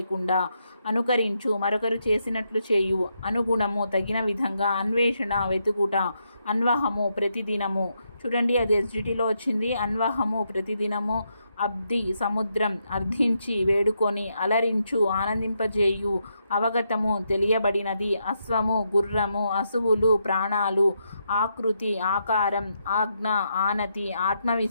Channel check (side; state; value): both; inverted; correlation -0.80